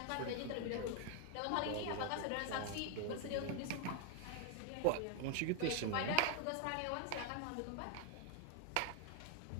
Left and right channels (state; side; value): different; both; correlation 0.00